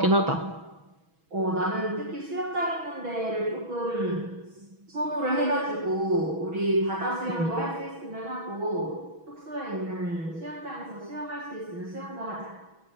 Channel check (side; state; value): left; late; 6.2 ms